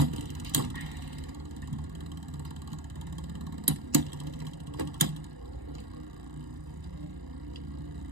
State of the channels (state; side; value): late; left; 1.0 ms